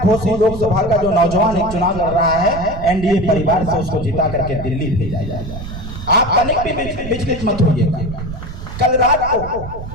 घोषी लोकसभा का जो नौजवान एक चुनाव लड़ रहा है एनडीए परिवार से, उसको जिता करके दिल्ली भेजा जाए। आप तनिक भी विचलित मत होइएगा। कल रात को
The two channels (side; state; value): right; noise; rumble, 10 dB below the sound